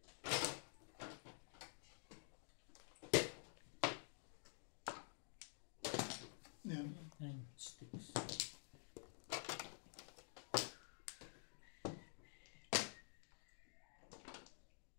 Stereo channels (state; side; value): silent; right; digital silence